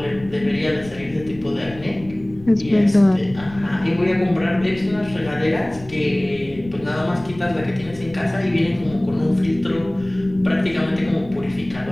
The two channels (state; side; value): noise; left; rumble, 18 dB below the sound